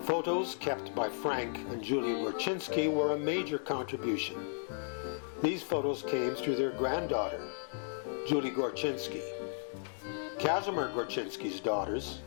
Photos kept by Frank and Julia Gorchynski were a major contribution. These photos came through their granddaughter, Julie Gorchynski. Casimir Gorchynski's daughters,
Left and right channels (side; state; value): right; silent; digital silence